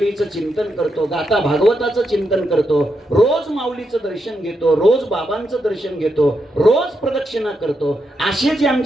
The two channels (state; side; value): normal; both; correlation 0.83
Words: चिंतन करतो, गाथा भागवताचं चिंतन करतो, रोज माऊलीचं दर्शन घेतो, रोज बाबांचं दर्शन घेतो, रोज प्रदक्षिणा करतो, असे जे